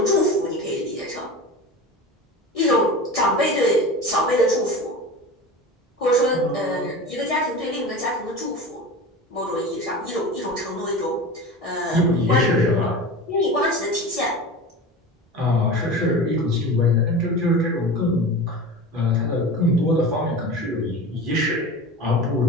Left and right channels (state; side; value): normal; both; correlation 0.31